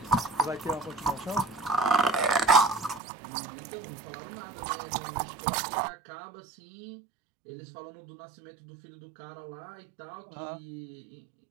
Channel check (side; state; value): left; drops out; at 3.0 s